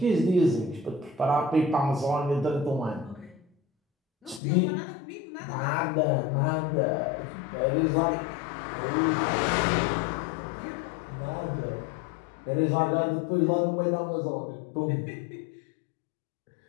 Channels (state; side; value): drops out; right; at 4.4 s